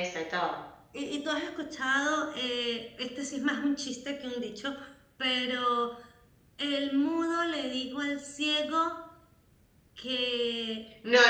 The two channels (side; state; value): both; identical; correlation 1.00